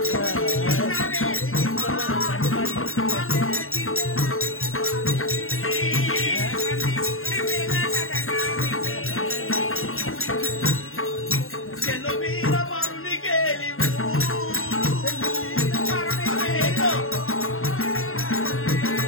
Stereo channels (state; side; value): late; right; 0.61 ms